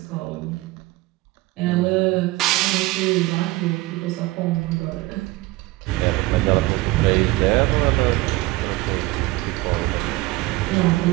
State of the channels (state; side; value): quieter; left; 19.9 dB